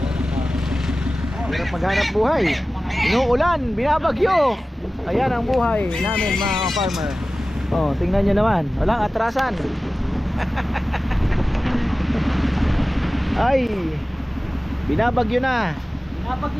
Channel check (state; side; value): normal; both; correlation 0.96